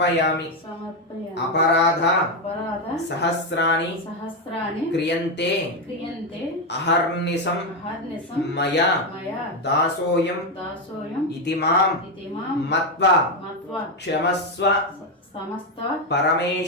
అపరాధ సహస్రాణి క్రియంతే అహర్నిశం మయా దాసోయం ఇతి మాం మత్వా క్షమస్వ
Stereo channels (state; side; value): normal; both; correlation 0.07